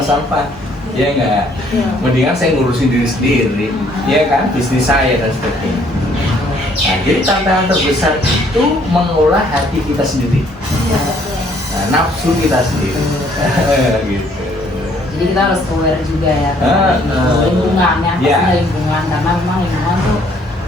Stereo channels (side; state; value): both; normal; correlation 0.63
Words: Ya enggak? Mendingan saya ngurusin diri sendiri, ya kan? Bisnis saya dan sebagainya. Nah, jadi tantangan terbesar itu mengolah hati kita sendiri. Nah, nafsu kita sendiri. Gitu. Jadi kita harus aware juga ya lingkungan yang pastinya lingkungan, karena memang lingkungan tuh